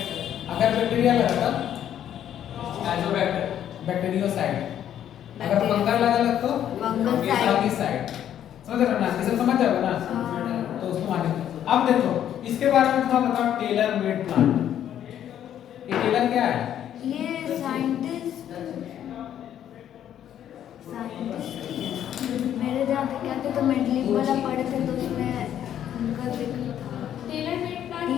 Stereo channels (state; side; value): quieter; right; 10.4 dB